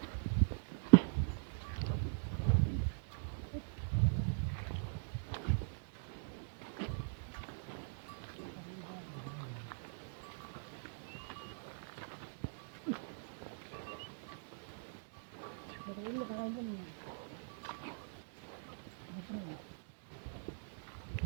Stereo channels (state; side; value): silent; left; digital silence